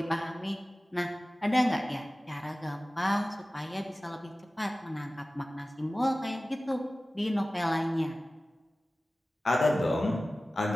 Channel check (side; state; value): both; normal; correlation 0.97